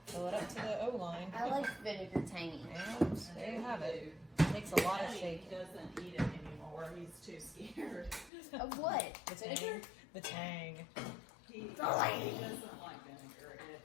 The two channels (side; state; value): right; drops out; at 8.3 s